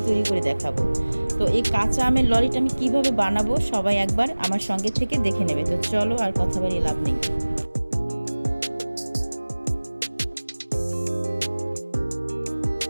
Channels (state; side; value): inverted; both; correlation -1.00